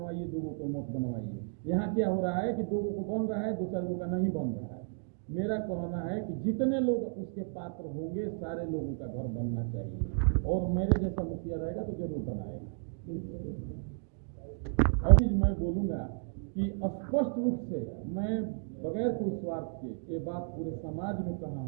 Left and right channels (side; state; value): left; silent; 56 dB below the other